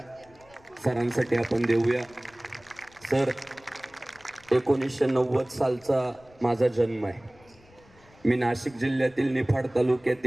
सरांसाठी आपण देऊया। सर, 1990 सालचा माझा जन्म आहे। मी नाशिक जिल्ह्यातील निफाड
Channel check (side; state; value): left; noise; rumble, 28 dB below the sound